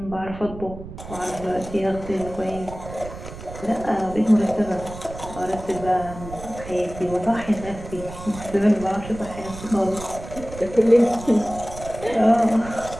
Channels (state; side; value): noise; right; rumble, 13 dB below the sound